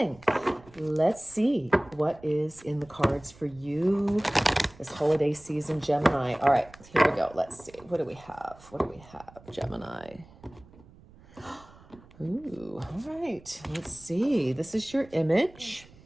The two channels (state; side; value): noise; right; rumble, 23 dB below the sound